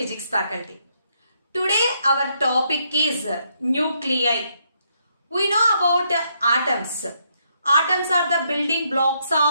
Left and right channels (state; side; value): inverted; both; correlation -0.75